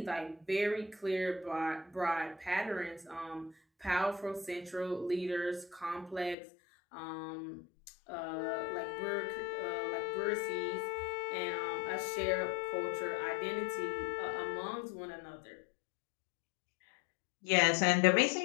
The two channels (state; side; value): drops out; right; at 6.4 s